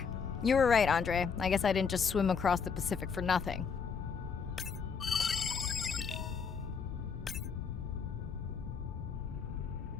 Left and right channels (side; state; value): right; quieter; 6.0 dB